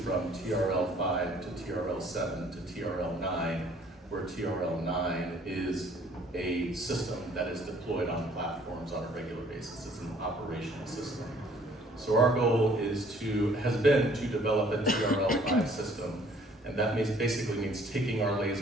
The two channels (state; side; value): normal; both; correlation 0.58